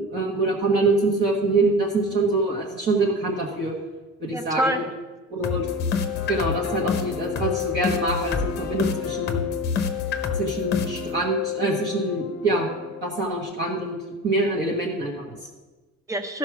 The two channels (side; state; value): both; normal; correlation 0.31